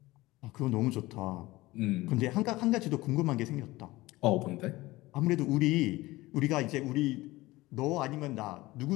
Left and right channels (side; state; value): right; quieter; 19.3 dB